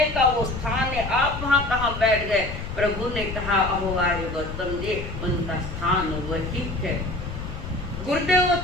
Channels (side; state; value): left; noise; rumble, 8 dB below the sound